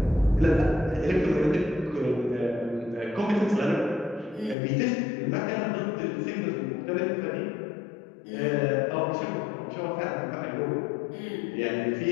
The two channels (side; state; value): right; drops out; at 4.5 s